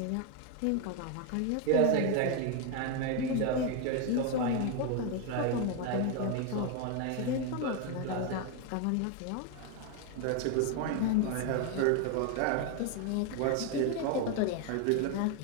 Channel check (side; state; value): both; different; correlation 0.01